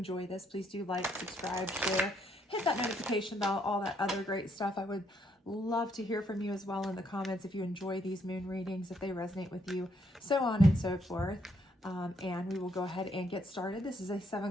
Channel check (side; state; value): both; normal; correlation 0.72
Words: this, please do like, subscribe, share, hit that notification bell, all that other great stuff. I would love to hear from you as well in the comments if you enjoy these moon readings, if they resonate with you, so on and so forth. And we will go ahead and get started. This is a